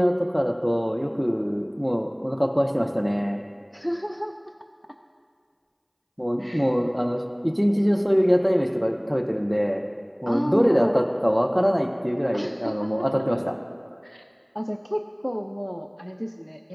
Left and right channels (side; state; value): both; identical; correlation 1.00